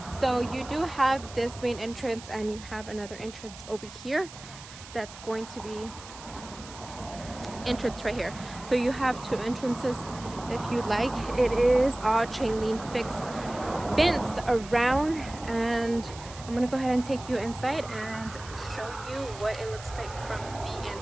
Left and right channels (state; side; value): noise; right; hiss, 16 dB below the sound